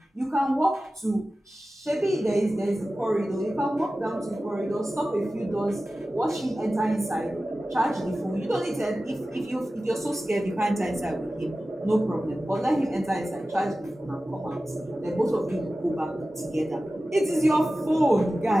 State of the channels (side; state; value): both; normal; correlation 0.95